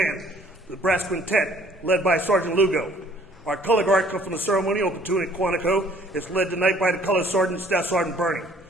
the Brass Quintet, led by Sergeant Lugo. Our color guard comes from the ceremonial platoon at Quantico. It's led tonight by the Color Sergeant, Staff Sergeant Bernie.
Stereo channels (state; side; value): normal; both; correlation 0.58